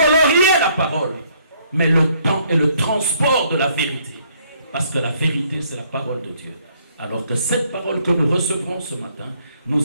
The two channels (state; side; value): inverted; both; correlation -0.66